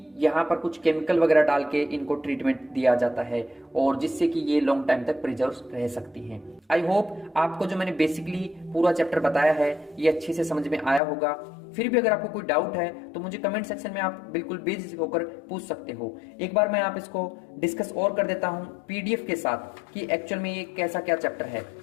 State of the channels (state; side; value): drops out; right; at 11.0 s